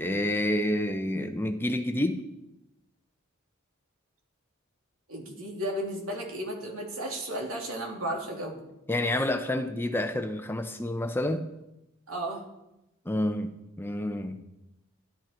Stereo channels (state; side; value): normal; both; correlation 0.64